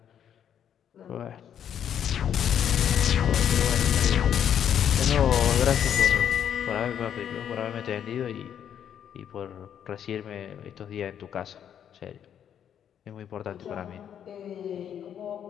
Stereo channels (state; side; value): quieter; right; 9.1 dB